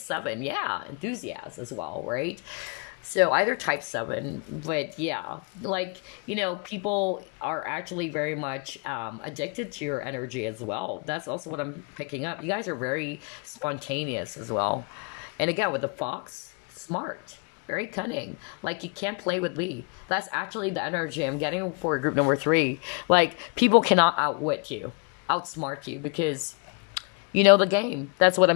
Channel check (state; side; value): quieter; right; 35.5 dB